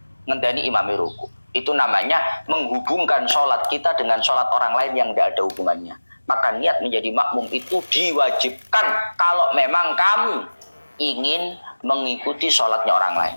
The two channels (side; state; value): both; inverted; correlation -1.00